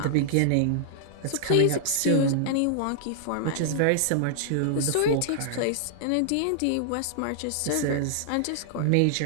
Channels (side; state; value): both; different; correlation -0.01